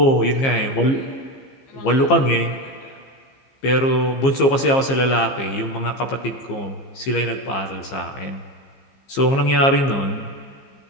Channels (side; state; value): right; late; 15 ms